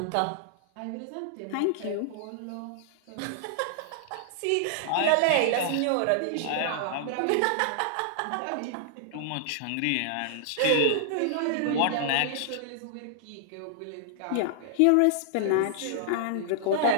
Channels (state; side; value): different; both; correlation -0.01